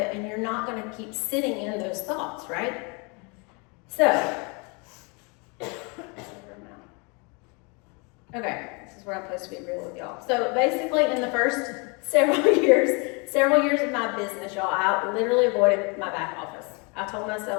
and you're not going to keep sitting in those thoughts, right? So, okay, this is where I'm supposed to be real with y'all. So basically in the first several years of my business, y'all, I literally avoided my back office. I told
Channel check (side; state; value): right; quieter; 31.6 dB